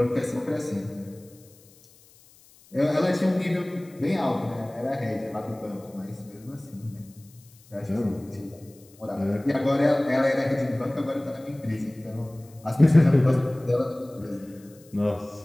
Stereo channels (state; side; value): noise; left; hiss, 27 dB below the sound